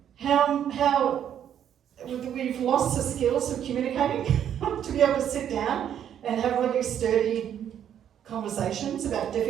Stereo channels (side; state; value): left; quieter; 9.6 dB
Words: how we've lost the skills of communicating to be able to sit down and have really sturdy conversations about